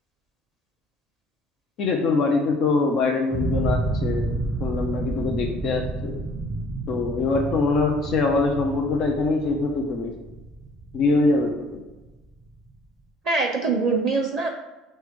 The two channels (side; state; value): both; normal; correlation 0.56